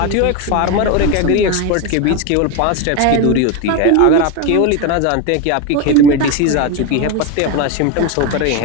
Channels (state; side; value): different; both; correlation 0.03